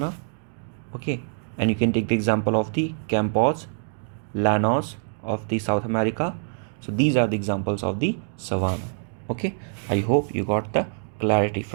okay, and you can take the example of the Campos, Llanos of the South America. So these are the examples of the savanna, okay. I hope you got the clarity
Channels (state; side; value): silent; left; digital silence